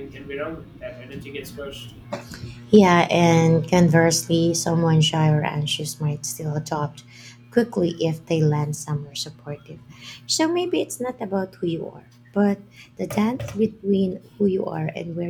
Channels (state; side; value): identical; both; correlation 1.00